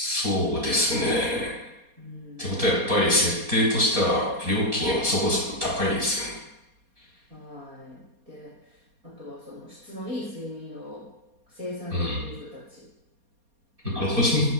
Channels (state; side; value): late; left; 4.2 ms